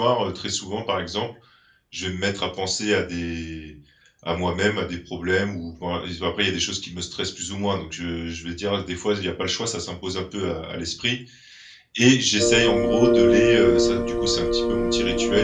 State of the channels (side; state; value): both; identical; correlation 1.00